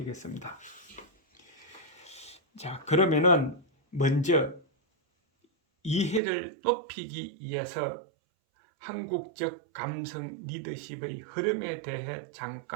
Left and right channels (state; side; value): drops out; left; at 6.2 s